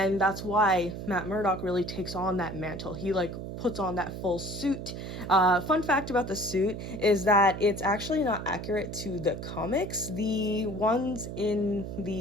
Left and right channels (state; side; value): noise; right; hum, 8 dB below the sound